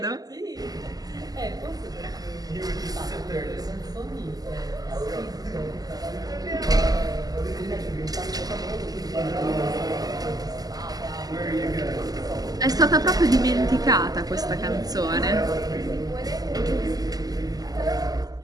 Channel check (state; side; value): late; left; 0.18 ms